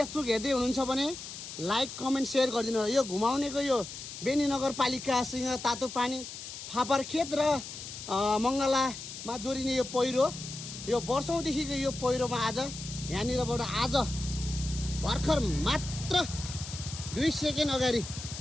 हेर्दै हुनुहुन्छ भने लाइक कमेन्ट सेयर गरिदिनु होला। यो घुमाउनेको यो बेनी नगरपालिकासँग तातो पानी फापरखेत र मङ्गलामा जोडिने यो पहिरो यो वर्षौँदेखिको यो पहिरोमा आज यहाँनिरबाट आज भर्खर मात्र 2 सेकेन्ड अगाडि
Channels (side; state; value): left; noise; hiss, 10 dB below the sound